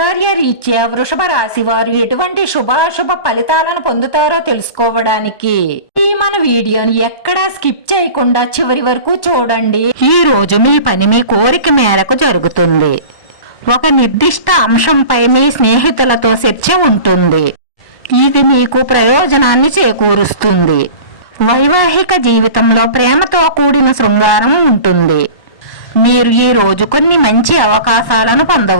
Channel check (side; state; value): right; late; 1.1 ms